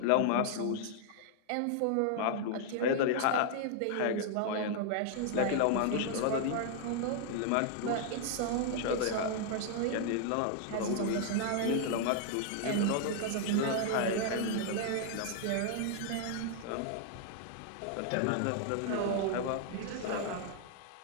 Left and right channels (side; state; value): both; different; correlation 0.00